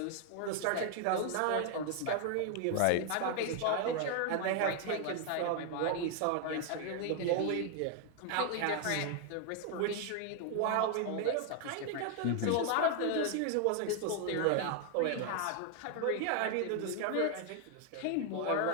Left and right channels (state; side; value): different; both; correlation 0.00